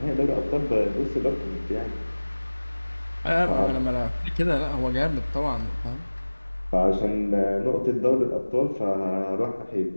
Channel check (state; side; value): inverted; both; correlation -1.00